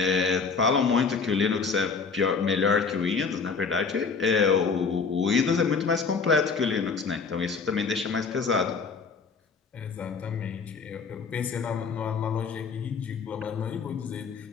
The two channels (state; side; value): quieter; right; 5.1 dB